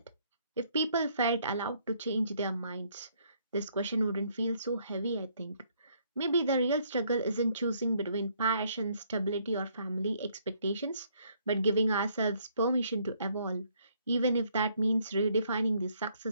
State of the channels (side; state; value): both; inverted; correlation -0.67